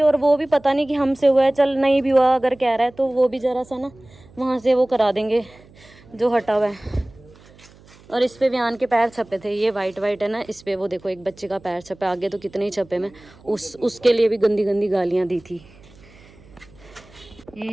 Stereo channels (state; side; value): noise; right; hum, 25 dB below the sound